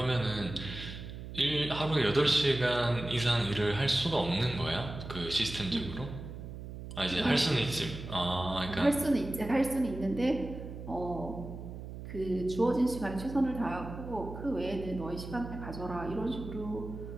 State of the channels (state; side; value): noise; right; hum, 10 dB below the sound